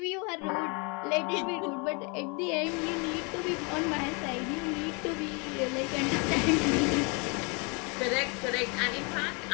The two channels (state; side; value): quieter; right; 32.1 dB